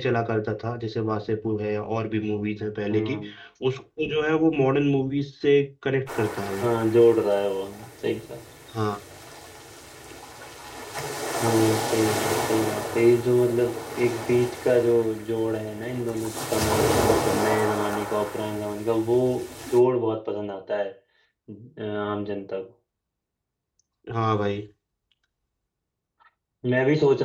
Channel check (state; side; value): identical; both; correlation 1.00